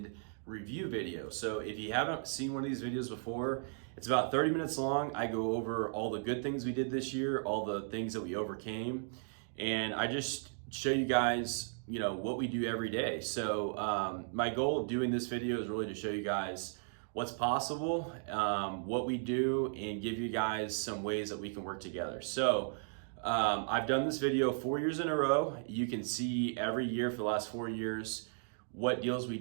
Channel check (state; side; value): silent; left; digital silence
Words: review video. So if you haven't seen one of these videos before, it's about 30 minutes long. I go over all the good things we did this year, all the things that we overcame, and I just show you guys, what we do every day. So my goal of doing this video is really to show you guys what's possible, what we do, and give you guys some ways that we can work together. So I've done this video 4 years in a row. You can see every year for the last 4 years what deals we